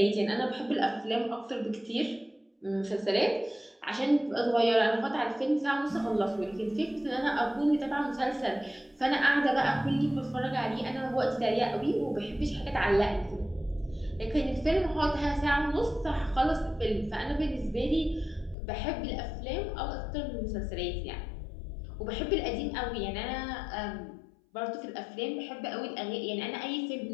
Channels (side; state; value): right; drops out; at 18.6 s